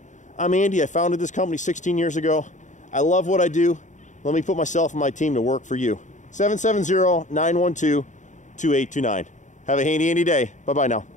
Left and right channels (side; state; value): right; late; 0.36 ms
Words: I'm Andy. I founded this company 16 years ago. I love what I do. Let me put myself and my team to work for you. 770-912-2829. Have a handy, Andy day. Bye-bye now.